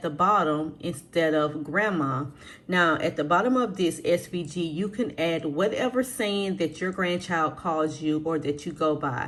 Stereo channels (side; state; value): both; identical; correlation 1.00